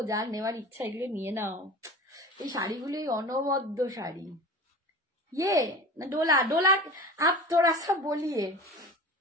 যার নেওয়ার ইচ্ছা এগুলো নিয়ে নাও, এই শাড়িগুলোই অনবদ্য শাড়ি। ये ना डोला, डोला आप थोड़ा सा बोलिए,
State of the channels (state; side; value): normal; both; correlation 0.35